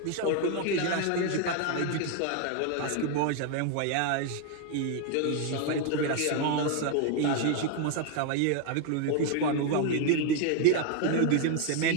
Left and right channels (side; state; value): both; different; correlation 0.01